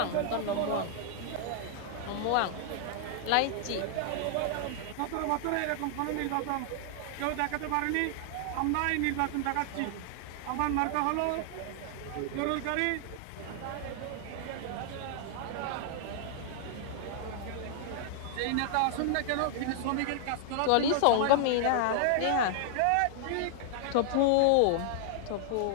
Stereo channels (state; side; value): different; both; correlation 0.00